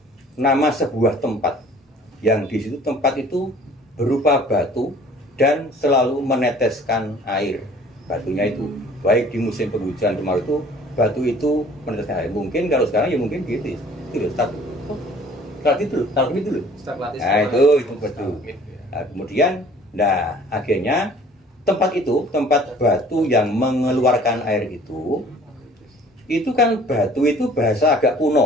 nama sebuah tempat yang di situ tempat itu berupa batu dan selalu meneteskan air. Batunya itu baik di musim penghujan kemarau itu batu itu meneteskan air. Mungkin kalau sekarang ya mungkin gitu. Itu loh start itu loh. Nah, itu betul. Nah, kemudian akhirnya tempat batu yang mengeluarkan air itu kan batu itu bahasa agak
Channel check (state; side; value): normal; both; correlation 0.51